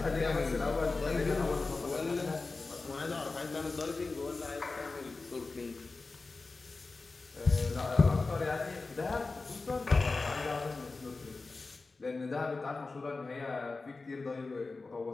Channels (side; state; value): right; quieter; 3.8 dB